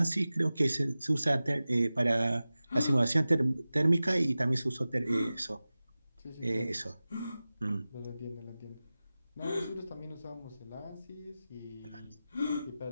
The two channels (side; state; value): both; inverted; correlation -0.96